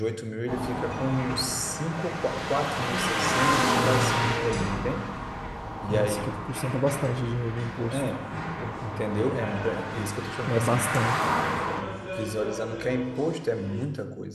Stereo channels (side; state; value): both; identical; correlation 1.00